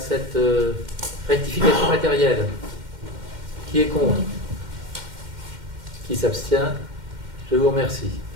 rectification matérielle? Qui est contre? Qui s'abstient? Je vous remercie.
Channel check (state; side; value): late; left; 2.1 ms